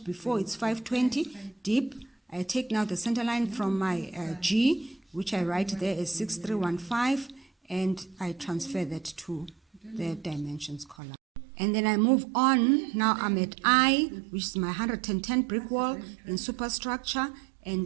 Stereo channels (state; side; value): drops out; left; at 11.0 s